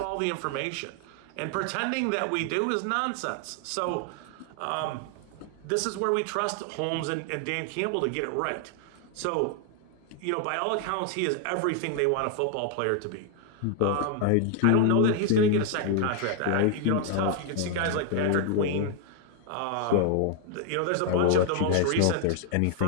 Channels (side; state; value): both; different; correlation 0.00